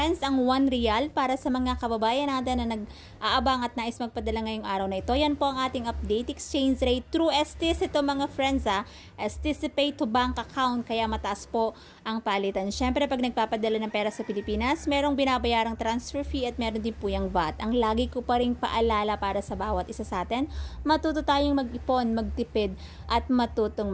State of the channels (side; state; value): both; identical; correlation 1.00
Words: ang 1 real para sa mga kababayan natin na nag-aabang at nais magpadala ngayong araw na ito. Yan po ang ating update exchange rate through STC ito mga friends STC Pay to Bank Account, kaya mataas po ang palitan. Siyempre pag nagpapadala ng pera sa Pilipinas, merong binabayarang transfer fee at meron din po yung VAT. Ang lagi ko pa rin paalala para sa bawat isa sa atin, matuto tayong mag-ipon, magtipid at matutong